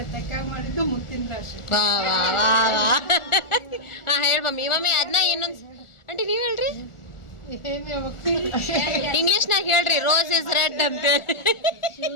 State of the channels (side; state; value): right; late; 1.4 ms